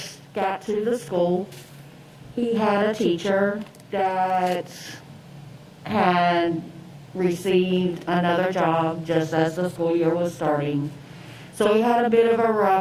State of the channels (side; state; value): both; identical; correlation 1.00